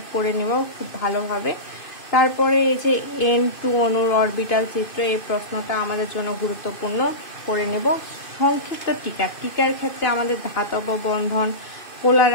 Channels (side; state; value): right; late; 2.6 ms